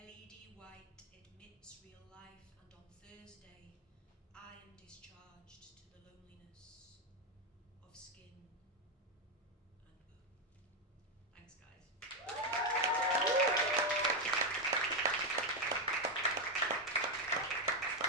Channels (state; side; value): normal; both; correlation 0.05